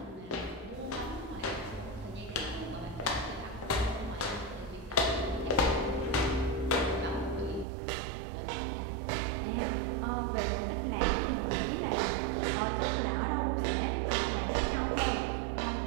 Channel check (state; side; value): drops out; left; at 7.7 s